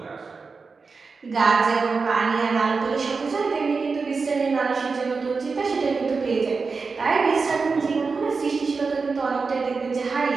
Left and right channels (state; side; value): quieter; left; 4.6 dB